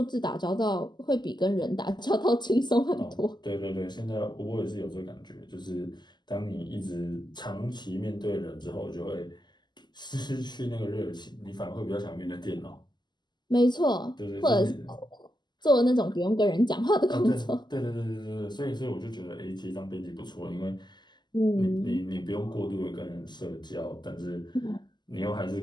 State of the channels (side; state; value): right; late; 0.21 ms